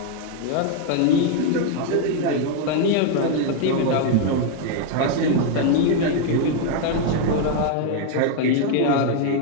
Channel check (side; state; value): both; different; correlation 0.00